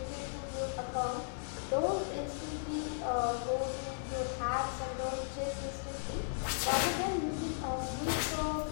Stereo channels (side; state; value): right; silent; 54 dB below the other